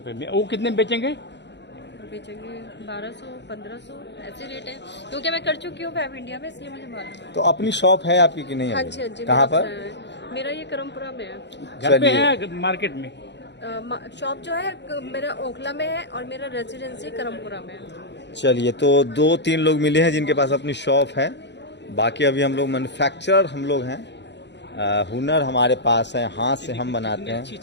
में। वो कितने में बेचेंगे? बेचेंगे 1200, 1500 ऐसे रेट है, क्योंकि मैं कर चुकी हूँ फैब इंडिया में, इसलिए मुझे मालूम है। तो अपनी शॉप है आपकी कि नहीं? हाँ जी, हाँ जी। कहाँ पर? मेरा ये करमपुरा में है। घर पे है मार्केट में? शॉप जो है मेरा ओखला में है और मेरा रेजिडेंसी करमपुरा में है। चलिए, तो 2-3 लोग मिले हैं जिनके पास अपनी शॉप है। बाकी अभी हम लोग मैन्युफैक्चरर हम लोग हैं। हुनर हमारे पास है, हाथ से हम बनाते हैं। अच्छी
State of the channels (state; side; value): late; right; 0.51 ms